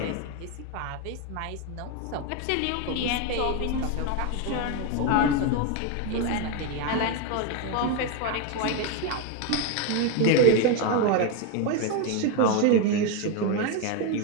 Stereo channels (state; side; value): different; both; correlation 0.01